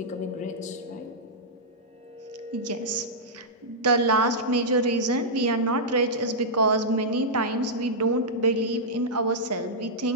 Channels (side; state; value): both; normal; correlation -0.10